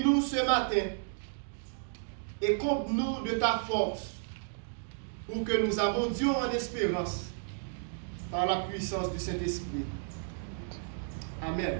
ce matin et comble-nous de ta force pour que nous abondions en espérance par la puissance du Saint-Esprit. Amen.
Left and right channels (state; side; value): silent; left; digital silence